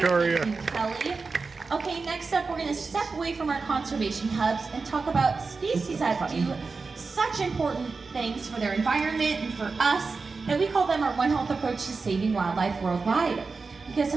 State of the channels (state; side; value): quieter; left; 4.3 dB